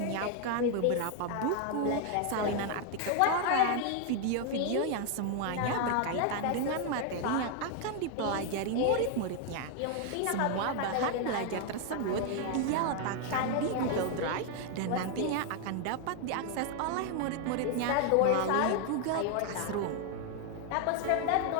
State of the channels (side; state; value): both; different; correlation 0.00